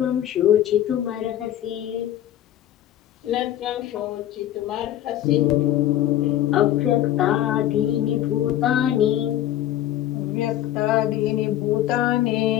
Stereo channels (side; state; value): right; quieter; 12.4 dB